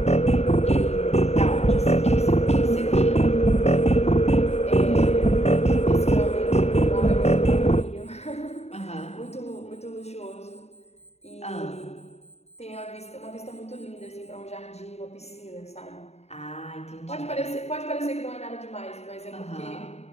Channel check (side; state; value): right; late; 0.31 ms